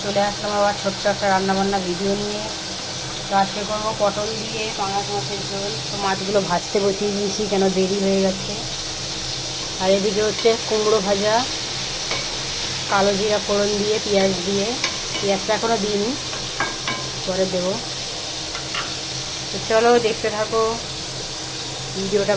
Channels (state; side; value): identical; both; correlation 1.00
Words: চলে আসলাম আবার ছোট্ট একটা রান্নাবান্না ভিডিও নিয়ে। তো আজকে করবো পটল দিয়ে পাঙাশ মাছের ঝোল। তো মাছগুলো ভাজতে বসিয়ে দিয়েছি, কেন দেরি হয়ে গেছে। আর এদিকে হচ্ছে কুমড়ো ভাজা, কালো জিরা ফোড়ন দিয়ে পেঁয়াজ দিয়ে। পেঁয়াজটা এখনও দিইনি, পরে দেবো। তো চলো দেখতে থাকো, ভিডিওটা